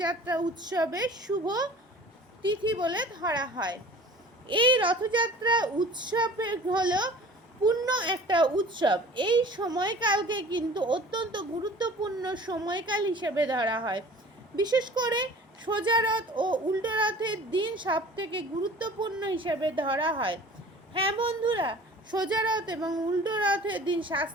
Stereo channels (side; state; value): both; normal; correlation 0.44